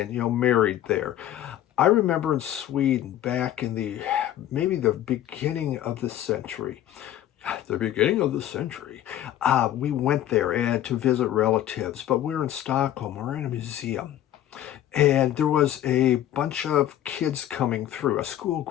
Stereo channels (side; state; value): right; quieter; 12.2 dB